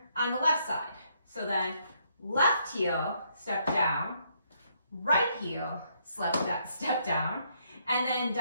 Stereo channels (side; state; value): both; inverted; correlation -0.73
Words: on the left side. So then left heel, step down, right heel, step down, and then